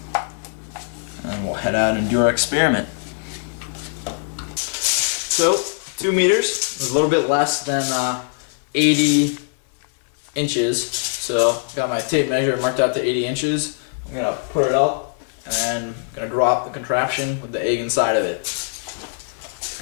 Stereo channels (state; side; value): silent; right; digital silence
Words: And we'll head out and do our experiment. So, 2 meters is a little bit less than 80 inches. So, got my tape measure marked out to 80 inches. I'm going to put it up, and then I'm going to drop the contraption with the egg inside of it. Let's